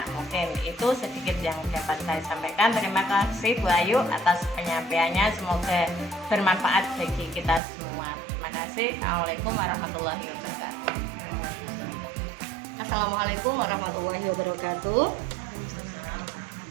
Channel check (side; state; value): left; drops out; at 7.6 s